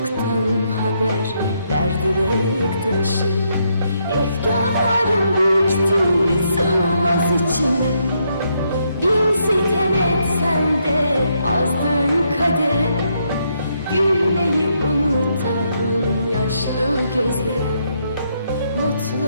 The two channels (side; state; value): both; inverted; correlation -0.76